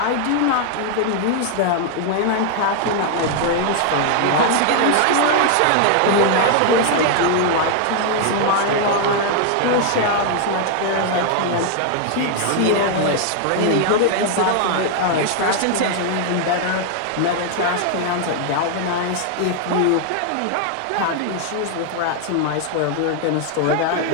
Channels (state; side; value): different; both; correlation 0.00